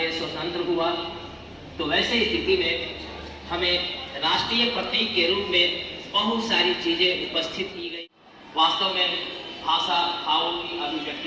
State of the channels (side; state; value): both; identical; correlation 1.00